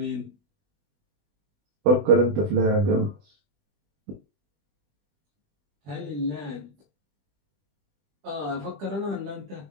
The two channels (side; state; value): left; late; 20 ms